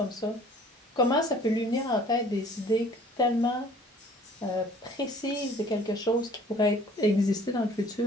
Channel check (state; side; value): normal; both; correlation 0.53